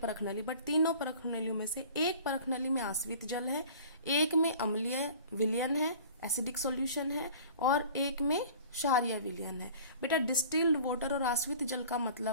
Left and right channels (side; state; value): both; inverted; correlation -0.44